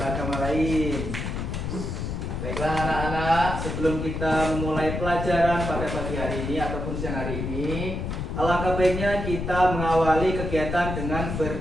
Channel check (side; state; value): left; noise; rumble, 4 dB below the sound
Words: lain. Baiklah anak-anak, sebelum kita memulai pelajaran pada pagi hari ini ataupun siang hari ini, alangkah baiknya kita mengawali kegiatan dengan